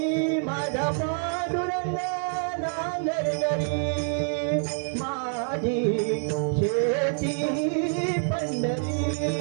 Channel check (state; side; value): silent; left; 55 dB below the other